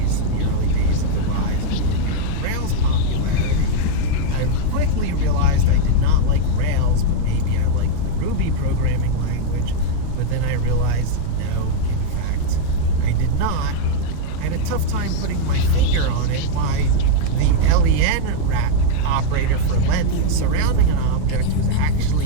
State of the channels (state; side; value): different; both; correlation 0.00